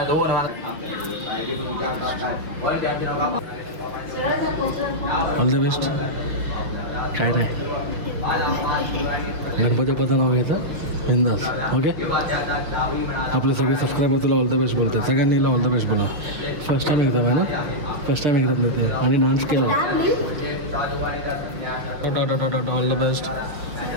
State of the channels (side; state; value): left; late; 6.2 ms